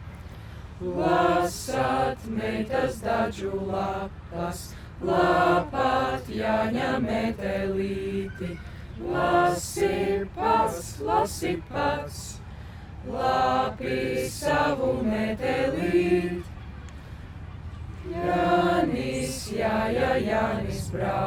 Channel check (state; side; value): identical; both; correlation 1.00